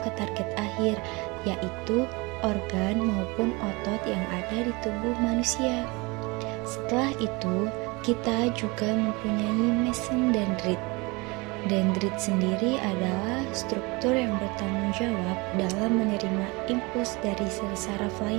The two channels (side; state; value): left; quieter; 25.9 dB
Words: target akhir, yaitu organ maupun otot yang ada di tubuh manusia. Setelah itu, kita juga mempunyai mesin dendrit. Dendrit sendiri adalah struktur yang bertanggung jawab dalam menerima impuls dari sel saraf